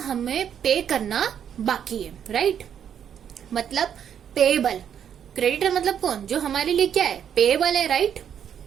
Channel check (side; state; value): left; quieter; 8.8 dB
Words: पे करना बाकी है, राइट? मतलब पेएबल। क्रेडिटर मतलब कौन? जो हमारे लिए क्या है? पेएबल है, राइट?